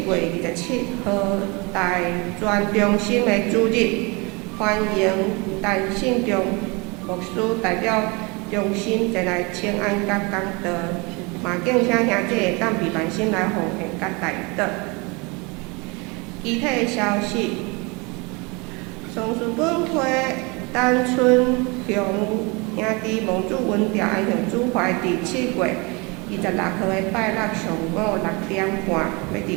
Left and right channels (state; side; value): quieter; left; 28.2 dB